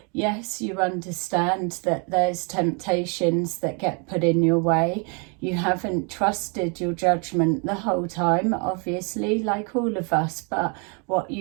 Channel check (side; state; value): left; quieter; 35.7 dB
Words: yes, you understand that there's temptations that get put in your way. You haven't trusted your judgment the whole time, obviously, like all of us, but what